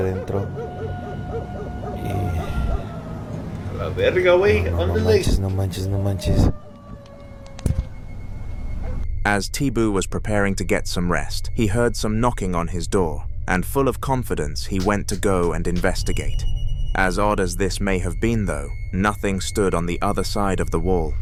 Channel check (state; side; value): identical; both; correlation 1.00